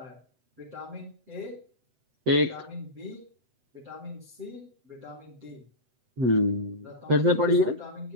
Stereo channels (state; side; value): late; left; 8.0 ms